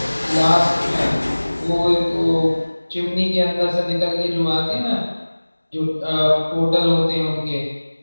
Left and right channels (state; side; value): inverted; both; correlation -1.00